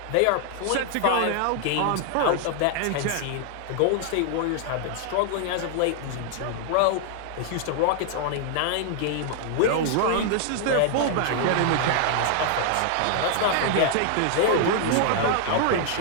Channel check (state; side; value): different; both; correlation 0.00